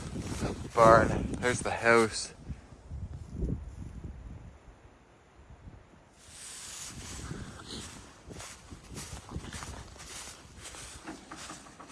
barn. There's the house.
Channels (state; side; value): identical; both; correlation 1.00